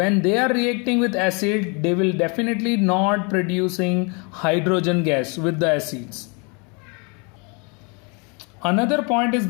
they are reacting with acid, they will definitely not producing hydrogen gas with the acids. Another point is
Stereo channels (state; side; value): quieter; right; 32.8 dB